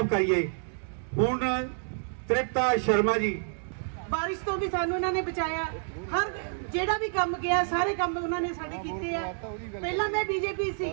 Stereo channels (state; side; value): silent; left; digital silence